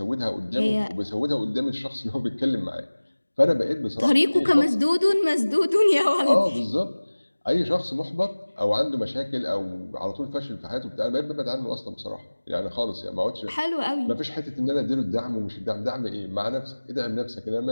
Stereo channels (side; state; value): both; inverted; correlation -1.00